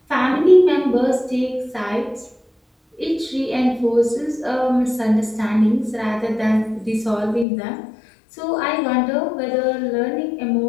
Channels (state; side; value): drops out; right; at 7.5 s